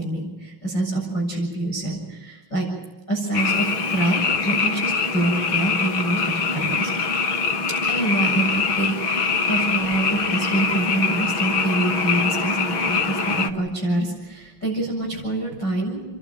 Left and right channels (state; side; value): late; right; 6.1 ms